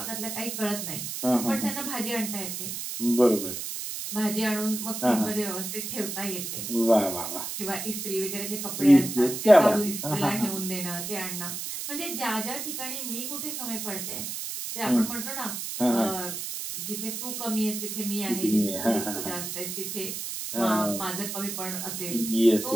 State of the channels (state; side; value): noise; right; hiss, 5 dB below the sound